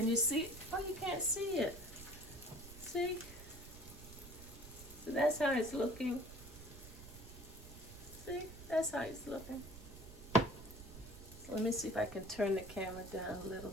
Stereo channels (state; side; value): noise; right; rumble, 15 dB below the sound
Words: you see it? Oh, you can't see it. See? So that's how it's looking. See? That's how it's looking. So let me see if I can turn the camera down a little